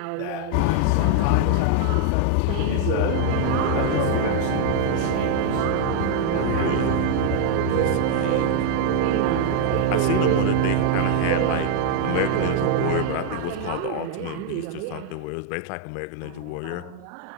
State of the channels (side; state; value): both; different; correlation 0.00